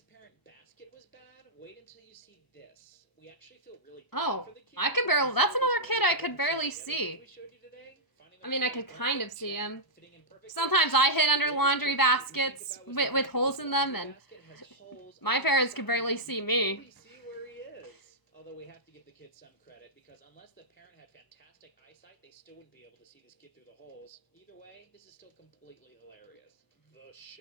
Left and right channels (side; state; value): right; late; 1.0 ms